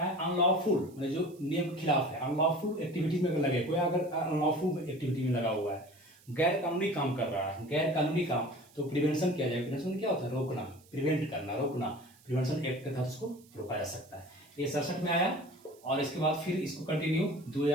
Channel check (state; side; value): noise; right; hiss, 27 dB below the sound